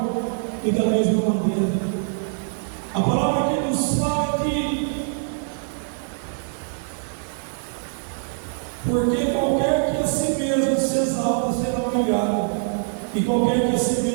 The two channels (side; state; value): left; silent; 63 dB below the other